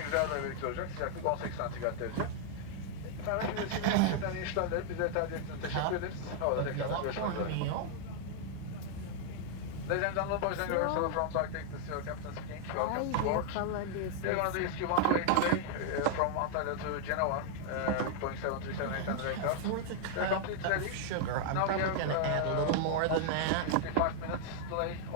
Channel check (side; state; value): both; different; correlation 0.00